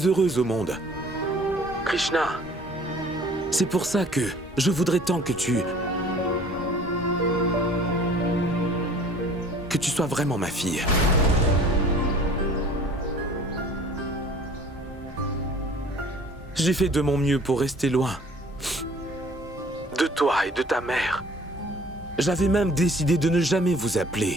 heureuse au monde. Krishna, c'est pour ça que je voudrais tant que tu sois vraiment ma fille. J'ai fait de mon mieux pour rester loin de toi et de ta mère. J'avais même décidé de ne jamais vous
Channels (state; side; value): normal; both; correlation 0.51